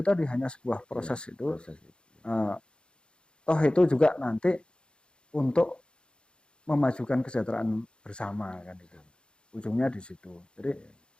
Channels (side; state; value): right; late; 0.053 ms